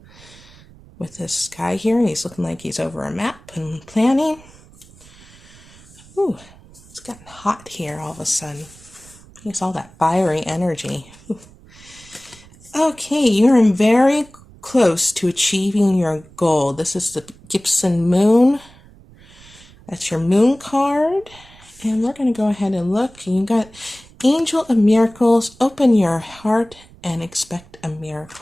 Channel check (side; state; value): right; noise; rumble, 24 dB below the sound